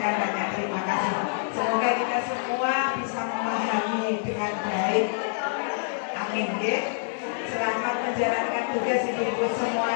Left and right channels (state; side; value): silent; right; digital silence